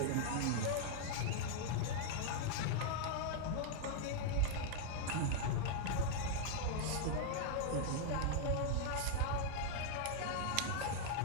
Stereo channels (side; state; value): both; different; correlation 0.00